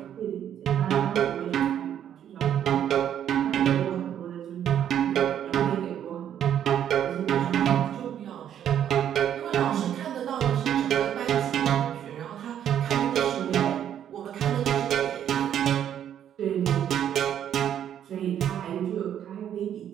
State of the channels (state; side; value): quieter; left; 9.9 dB